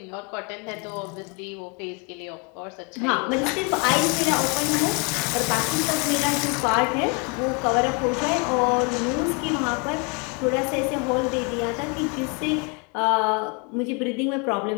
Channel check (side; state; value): right; quieter; 33.1 dB